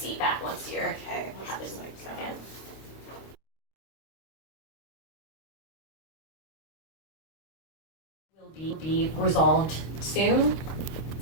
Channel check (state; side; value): late; right; 26 ms